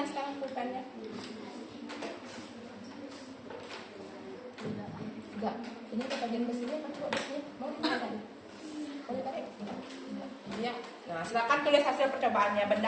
sekarang, pulpennya. Enggak. Ini kita bagian besinya kan coba besinya. Mau ditarik? Mau ditarik? Iya. Nah, silakan tulis hasil percobaannya.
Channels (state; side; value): identical; both; correlation 1.00